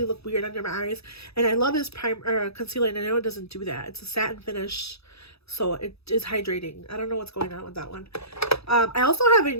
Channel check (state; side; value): late; right; 0.78 ms